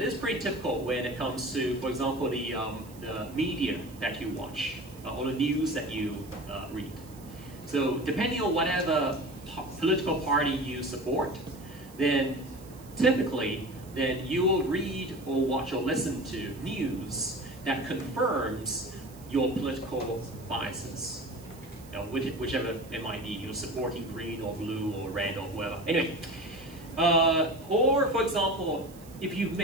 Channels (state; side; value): noise; right; hiss, 23 dB below the sound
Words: is pretty typical when it comes to, for example, the media that you watch, or the news that you read. So depending on whatever political party you support, then typically, then you will read or watch or listen to news that confirms your political biases. Whichever it might be, you're supporting green or blue or red or whatever. Anyway, or for example, if you've